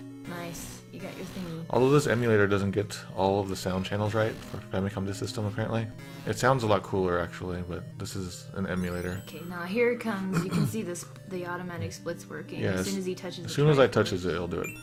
Nice. You got your thingy. Although this emulator doesn't get all of the sound channels right for Famicom Disk System, apparently. It sounds a lot cooler, actually, but this is an emulator. Okay, now here it comes. You can see this, the automatic splits working. Yeah, as soon as he touches as soon as I touches it, it'll do it.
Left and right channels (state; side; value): identical; both; correlation 1.00